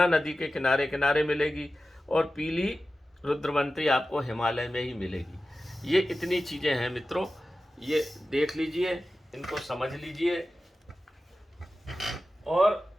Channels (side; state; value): both; normal; correlation 0.94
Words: नदी के किनारे किनारे मिलेगी, और पीली रुद्रवंती आपको हिमालय में ही मिलेगी। ये इतनी चीज़ें हैं मित्रों, ये देख लीजिए, इनको समझ लीजिए। और